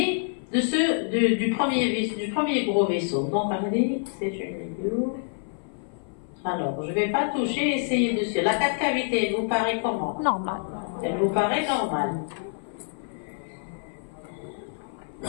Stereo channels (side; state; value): right; silent; 56 dB below the other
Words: du premier gros vaisseau. Donc, c'est une vidéo. Alors, je ne vais pas toucher, essayer dessus. La quatre cavités, elle vous paraît comment? Normal. Elle vous paraît normale.